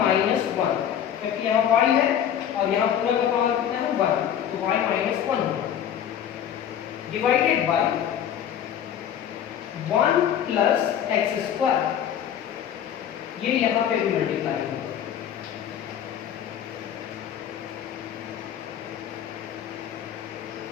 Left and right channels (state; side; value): quieter; right; 9.6 dB